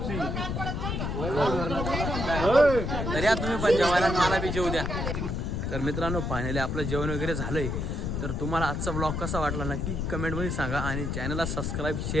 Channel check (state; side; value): noise; left; rumble, 2 dB below the sound